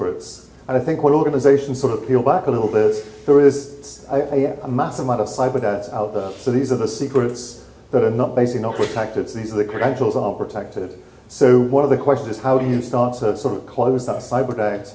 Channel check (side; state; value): both; identical; correlation 1.00